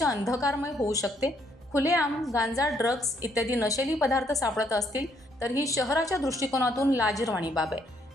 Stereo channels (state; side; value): normal; both; correlation 0.71